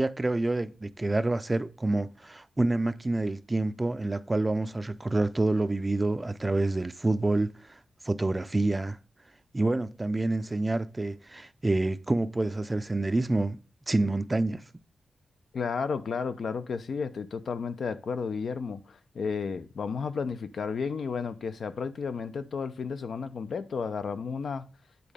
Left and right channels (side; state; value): both; normal; correlation 0.94